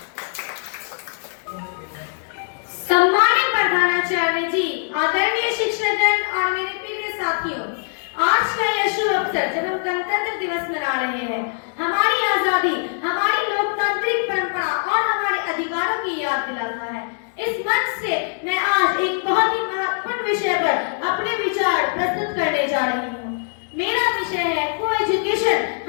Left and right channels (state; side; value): silent; right; 64 dB below the other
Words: सम्मानित प्रधानाचार्य जी, आदरणीय शिक्षकगण और मेरे प्रिय साथियों, आज का यह शुभ अवसर जब हम गणतंत्र दिवस मना रहे हैं, हमारी आजादी, हमारी लोकतांत्रिक परंपरा और हमारे अधिकारों की याद दिलाता है। इस मंच से मैं आज एक बहुत ही महत्वपूर्ण विषय पर अपने विचार प्रस्तुत करने जा रही हूँ। मेरा विषय है को एजुकेशन